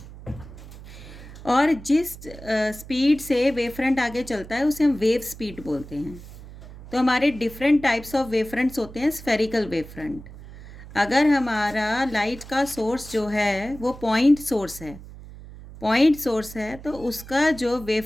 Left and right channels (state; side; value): noise; right; hum, 16 dB below the sound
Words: और जिस स्पीड से वेव फ्रंट आगे चलता है उसे हम वेव स्पीड बोलते हैं। तो हमारे different types of wave fronts होते हैं। स्फेरिकल वेव फ्रंट, अगर हमारा लाइट का सोर्स जो है वो पॉइंट सोर्स है तो उसका जो वेव